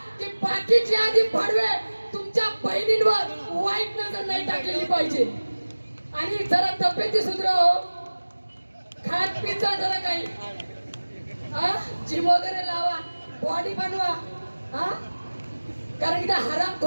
की बाकी जिहादी भडवे तुमच्या बहिणींवर वाईट नजर नाही टाकलेली पाहिजे. आणि जरा तब्येती सुधाराव, खात पिझ्झा जरा काही जिम वगैरे लावा, बॉडी बनवा. कारण की त्या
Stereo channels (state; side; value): inverted; both; correlation -1.00